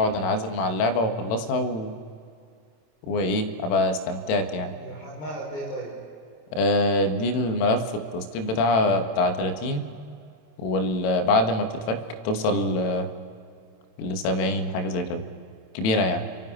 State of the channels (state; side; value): late; right; 27 ms